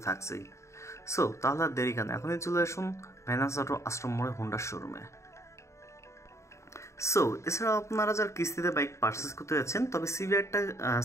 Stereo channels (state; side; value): late; right; 0.14 ms